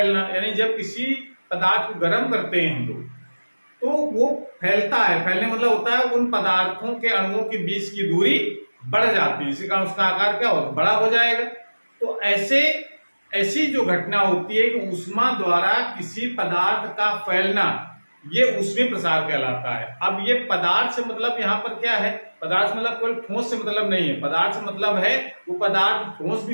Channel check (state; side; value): inverted; both; correlation -1.00